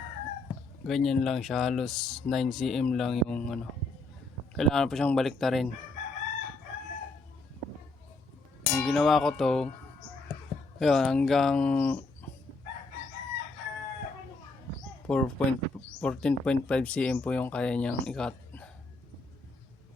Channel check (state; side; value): quieter; right; 3.1 dB